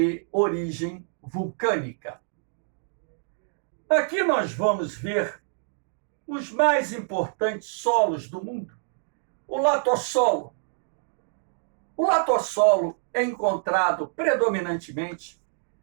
origem vulcânica. Aqui nós vamos ver os mais importantes solos do mundo. O latossolo. O latossolo é encontrado predominantemente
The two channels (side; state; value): left; silent; digital silence